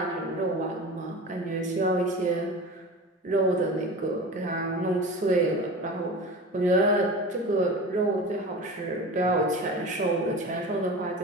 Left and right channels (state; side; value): normal; both; correlation 0.33